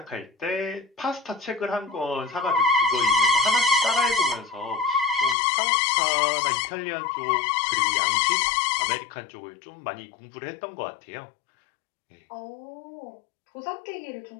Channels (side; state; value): right; drops out; at 5.4 s